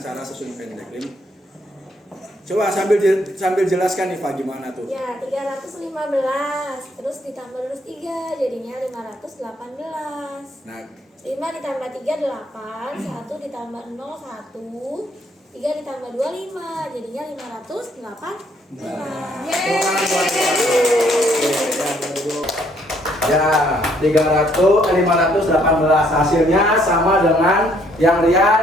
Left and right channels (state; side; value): normal; both; correlation 0.67